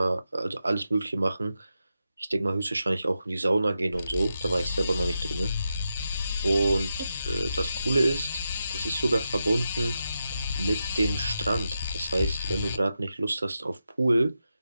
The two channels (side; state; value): both; inverted; correlation -0.87